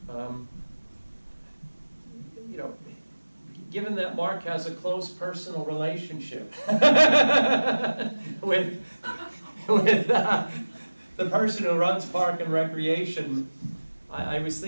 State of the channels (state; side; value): inverted; both; correlation -1.00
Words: You know, given that Mark has a close personal relationship with the person who runs Park and Recreation, I was